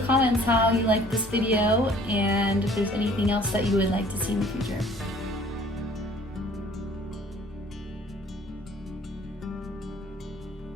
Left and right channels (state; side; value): normal; both; correlation 0.54